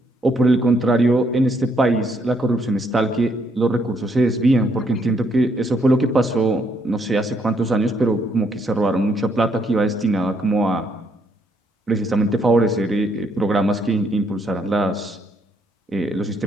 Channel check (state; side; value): normal; both; correlation 0.72